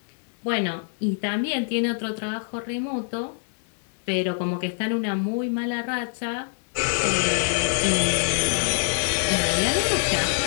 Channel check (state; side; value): silent; right; digital silence